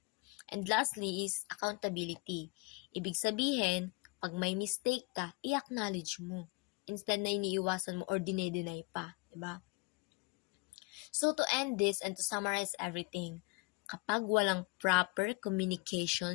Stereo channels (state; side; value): quieter; right; 27.8 dB